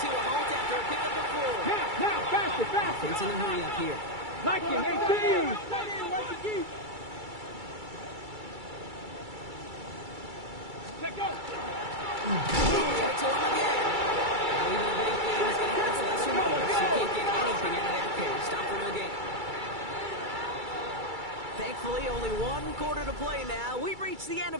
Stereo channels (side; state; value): left; late; 2.3 ms